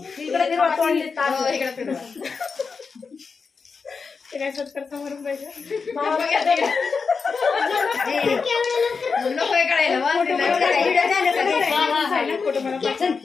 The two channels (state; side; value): quieter; right; 5.1 dB